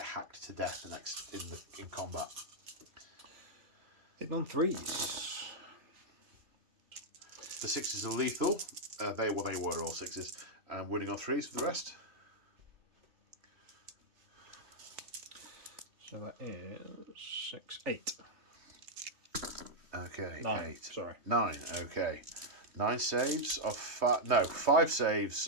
hacked to death in combat. Hitting on 3s. The 6s are lethal. They were all 6s. And winning on 3s for the rest. So that is 6, 8. Okay, 9. 8. Sorry. 9. Okay. 9 saves of 5. No, 5 saves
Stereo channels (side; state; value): left; late; 3.2 ms